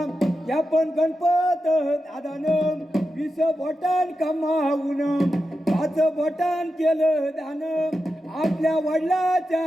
या पण गणपत दादानं 20 बोटान कमावून 5 बोटान केलं दान। आपल्या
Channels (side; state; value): both; normal; correlation 0.90